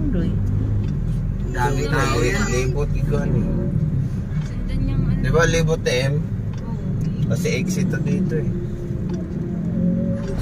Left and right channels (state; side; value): identical; both; correlation 1.00